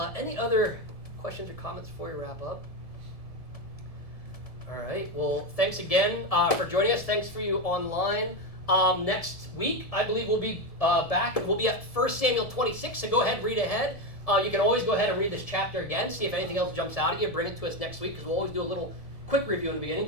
Any other questions or comments before we wrap up? All right, well, thanks again for joining us. Thanks for you online. Next week, I believe we'll be back. We'll be at 1 Samuel 26, so go ahead, read ahead. You can always go ahead and read this chapter again, see if anything else jumps out at you. Bring it to us next week, because we'll always do a little quick review in the beginning,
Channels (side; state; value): right; late; 1.7 ms